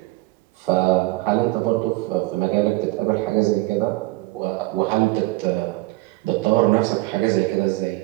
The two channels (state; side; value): quieter; left; 20.9 dB